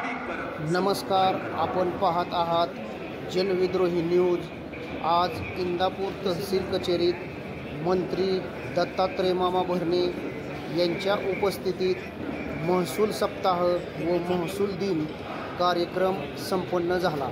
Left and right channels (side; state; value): both; identical; correlation 1.00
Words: आपण पाहत आहात जनविद्रोही न्यूज। आज इंदापूर तहसील कचेरीत मंत्री दत्तात्रय मामा भरणे यांच्या उपस्थितीत महसूल सप्ताह व महसूल दिन कार्यक्रम संपन्न झाला।